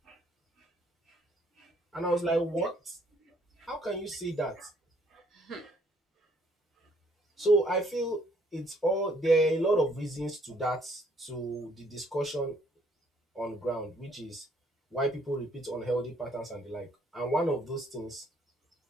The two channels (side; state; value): both; normal; correlation 0.65